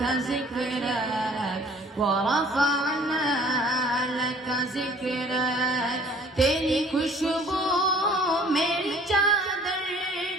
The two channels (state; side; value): normal; both; correlation 0.53